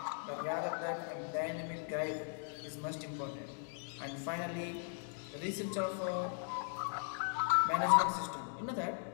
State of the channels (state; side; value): silent; right; 52 dB below the other